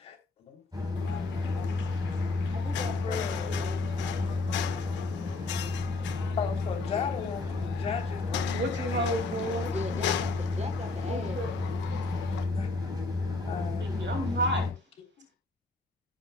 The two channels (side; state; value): right; quieter; 3.2 dB